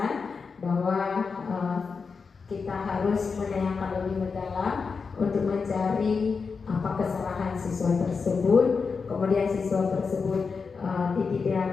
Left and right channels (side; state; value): right; quieter; 5.1 dB